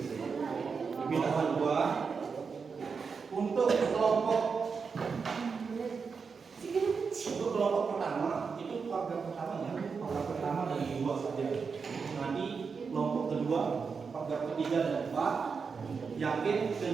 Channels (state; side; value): quieter; left; 5.4 dB